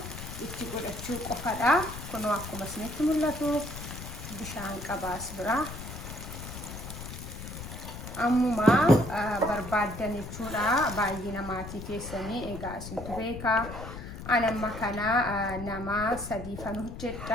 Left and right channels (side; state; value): left; noise; rumble, 10 dB below the sound